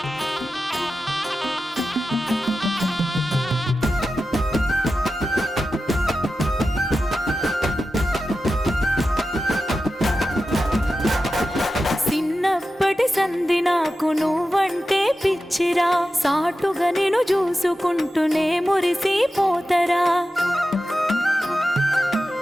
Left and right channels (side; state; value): both; normal; correlation 0.92